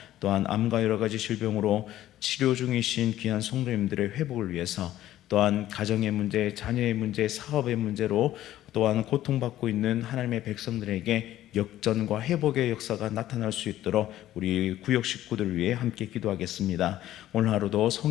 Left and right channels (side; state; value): right; quieter; 13.6 dB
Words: 또한 암과 여러 가지 질병으로 치료 중이신 귀한 성도님들의 회복을 위해서, 또한 가정의 문제, 자녀의 문제, 사업의 문제로 또한 고통받고 있는 하나님의 백성들에게 역전과 회복의 역사가 나타날 수 있도록 우리 구역 식구들을 위해 함께 기도하겠습니다. 오늘 하루도